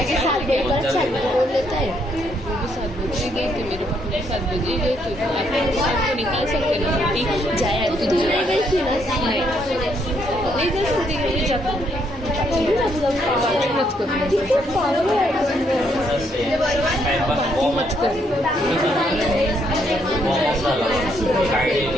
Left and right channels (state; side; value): normal; both; correlation 0.72